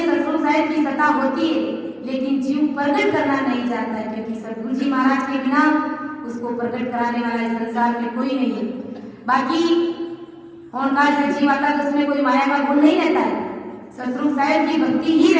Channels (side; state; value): both; identical; correlation 1.00